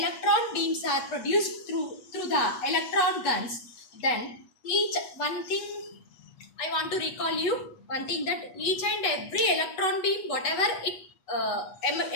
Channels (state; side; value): late; right; 8.3 ms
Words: beams are produced through the electron guns, then one thing I want to recall you, one thing that each and every electron beam, whatever it